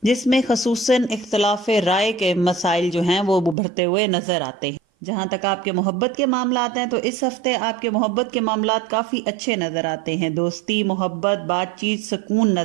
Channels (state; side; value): drops out; left; at 3.6 s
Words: جس میں خصوصاً اختلاف رائے کے مسائل جو ہیں وہ ابھرتے ہوئے نظر آتے ہیں. جہاں تک آپ کے محبت کے معاملات ہیں تو اس ہفتے آپ کے محبت کے معاملات کافی اچھے نظر آتے ہیں. دوستی، محبت، بات چیت، سکون